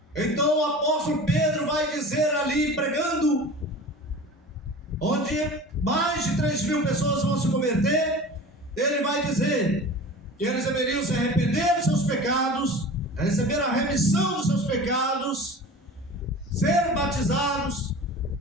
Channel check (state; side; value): normal; both; correlation 0.37